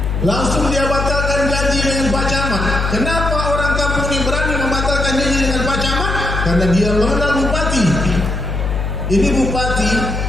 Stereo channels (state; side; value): noise; left; hum, 2 dB below the sound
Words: Langsung dia batalkan janji dengan Pak Camat. Kenapa orang kampung ini berani membatalkan janji dengan Pak Camat? Karena dia mengenal Bupati. Ini Bupati